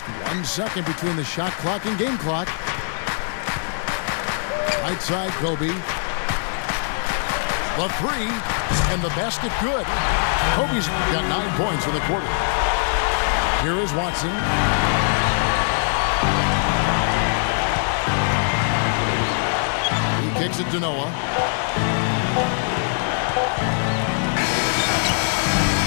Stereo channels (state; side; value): silent; right; 64 dB below the other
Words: 1 second between the shot clock and game clock. Right side, Kobe. The 3, and the basket good. Kobe's got 9 points in the quarter. Here is Watson. He kicks it to Noah.